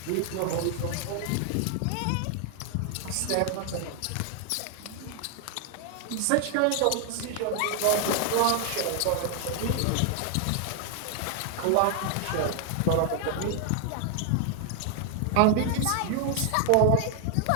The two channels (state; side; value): different; both; correlation 0.00